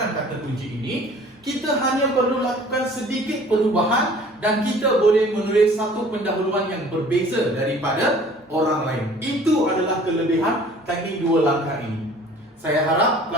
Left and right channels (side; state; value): both; normal; correlation 0.50